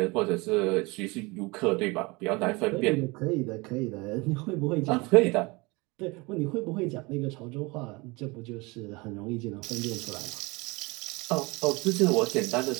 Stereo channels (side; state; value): left; quieter; 25.2 dB